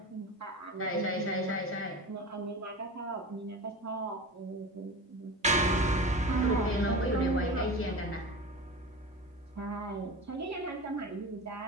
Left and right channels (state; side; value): normal; both; correlation 0.30